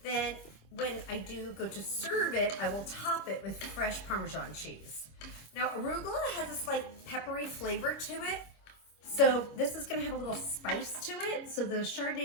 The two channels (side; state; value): right; late; 25 ms